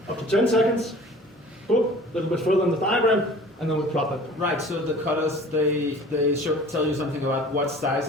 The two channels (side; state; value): both; normal; correlation 0.45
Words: up to 10 seconds, boop, a little bit further in the diagram, and then we plot that. Right, so the cutters, they should tell you something about what size